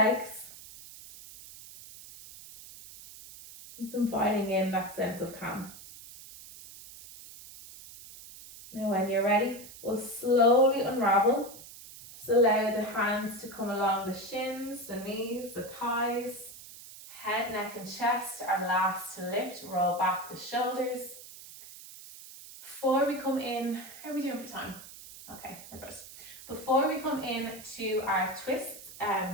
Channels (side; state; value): right; noise; hiss, 16 dB below the sound